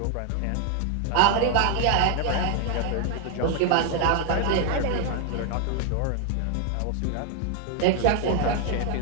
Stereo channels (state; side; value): different; both; correlation 0.00